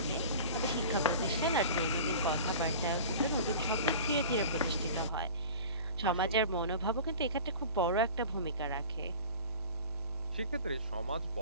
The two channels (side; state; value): both; inverted; correlation -0.39